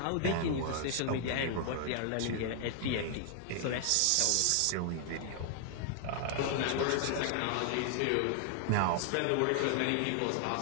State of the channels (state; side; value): different; both; correlation 0.00